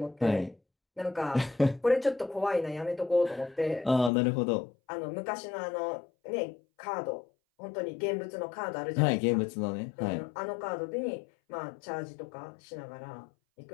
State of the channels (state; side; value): drops out; right; at 4.1 s